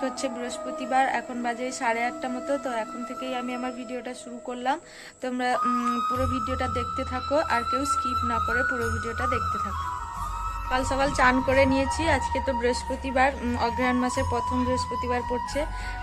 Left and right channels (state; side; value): identical; both; correlation 1.00